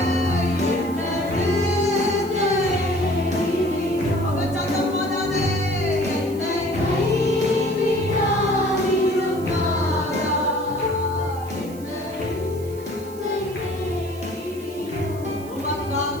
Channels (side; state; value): right; noise; hiss, 20 dB below the sound